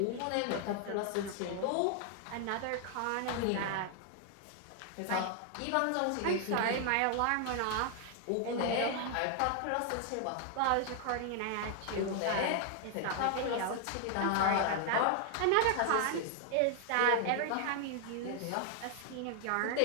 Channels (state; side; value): different; both; correlation 0.00